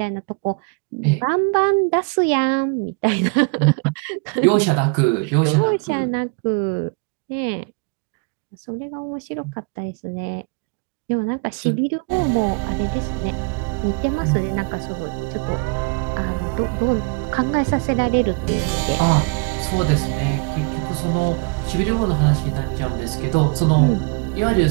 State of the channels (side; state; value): left; quieter; 30.8 dB